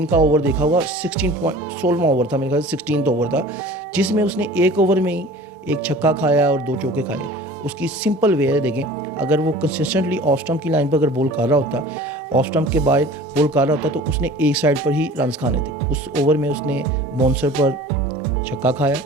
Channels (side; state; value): both; normal; correlation 0.43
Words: का ओवर देखा होगा, 16वां ओवर था, मेरे ख्याल से 16th ओवर था, जिसमें उसने एक ओवर में ही एक छक्का खाया और 2 चौके खाए। उसकी सिंपल वे है, देखें, अगर वो कंसिस्टेंटली ऑफ स्टंप की लाइन पर अगर बॉल कर रहा होता, ऑफ स्टंप के बाद बॉल कर रहा होता, तो उसने एक साइड पर ही रन्स खाने थे। उस ओवर में उसने बाउंसर पर छक्का खाया,